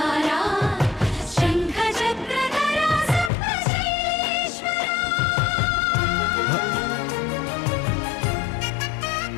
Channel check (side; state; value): right; drops out; at 3.3 s